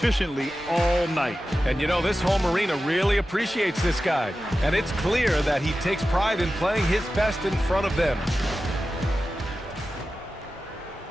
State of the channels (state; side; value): normal; both; correlation 0.93